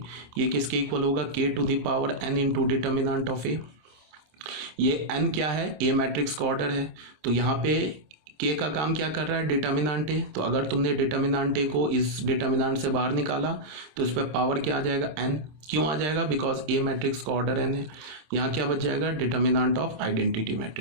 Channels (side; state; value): left; late; 26 ms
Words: ये किसके इक्वल होगा, k to the power n into determinant of A. ये एन क्या है, ए मैट्रिक्स का ऑर्डर है, तो यहाँ पे के का काम क्या कर रहा है, डिटर्मिनेंट ए। तो अगर तुमने डिटर्मिनेंट ए को इस डिटर्मिनेंट से बाहर निकाला तो इस पर पावर क्या आ जाएगा, एन। क्यों आ जाएगा, बिकॉज ए मैट्रिक्स का ऑर्डर एन है। यहाँ क्या बच जाएगा, determinant of identity